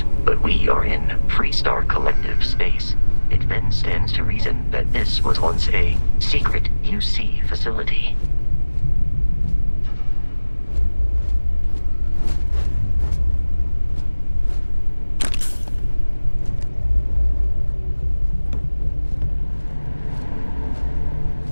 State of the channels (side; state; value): both; inverted; correlation -1.00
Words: but we are in Freestar Collective space. It then stands to reason that this was once a secret UC facility.